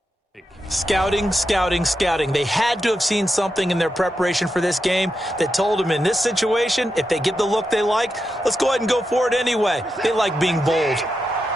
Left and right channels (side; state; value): both; normal; correlation 0.87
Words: Scouting, scouting, scouting. They had to have seen something in their preparation for this game that told them in this situation, if they get the look they like, let's go ahead and go for it anyway. They like being bold.